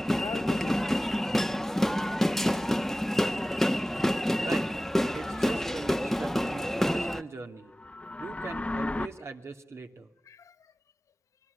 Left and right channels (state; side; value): normal; both; correlation 0.97